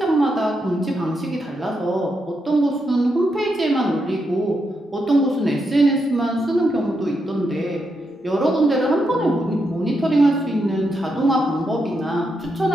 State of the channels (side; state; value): both; normal; correlation 0.83